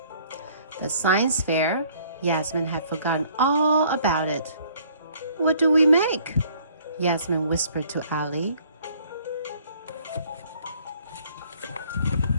The science fair? Yasmin had forgotten all about it. What do we make? Yasmin whispered to Ali.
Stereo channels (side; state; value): both; inverted; correlation -0.59